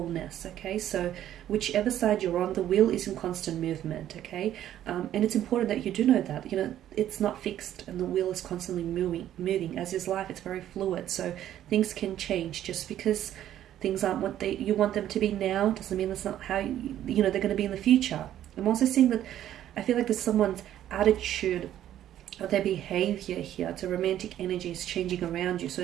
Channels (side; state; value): left; quieter; 11.8 dB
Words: okay? So whichever side you're on, the wheel is in constant movement, okay? And it's important that you do know that, you know, it's not fixed, and the wheel is constantly moving. As is life, it's very fluid, so things can change. Just because things aren't what you want them to be now doesn't mean that's not how they're going to be in the future. I'm also seeing that I feel like there's someone's attitude or their behavior here to romantic energy is changing around you.